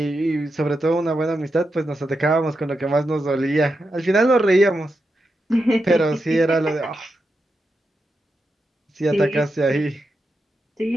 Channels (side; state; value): both; normal; correlation 0.87